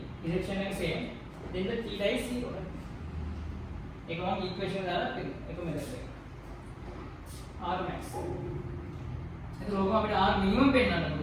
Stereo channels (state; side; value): identical; both; correlation 1.00